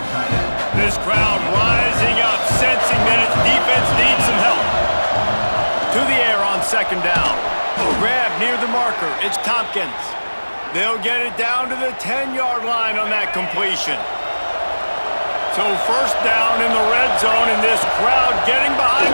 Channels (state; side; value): inverted; both; correlation -1.00